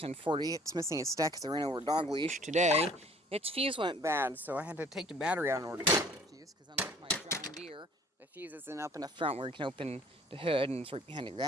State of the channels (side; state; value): both; normal; correlation 0.53